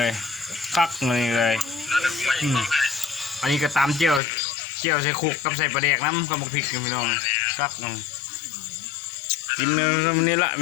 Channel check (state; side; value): drops out; right; at 4.2 s